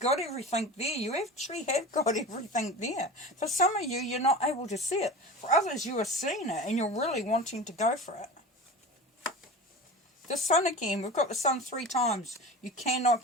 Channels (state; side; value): normal; both; correlation 0.32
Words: everything there. You actually have got everything there. For some of you, you're not able to see it. For others, you are seeing it and you're really wanting to go for it. The Sun again. We've got the Sun 3 times. You